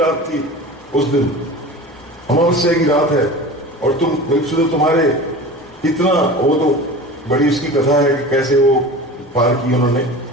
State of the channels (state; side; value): noise; left; hum, 30 dB below the sound